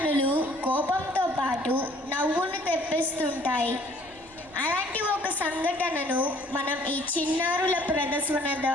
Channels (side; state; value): left; noise; rumble, 28 dB below the sound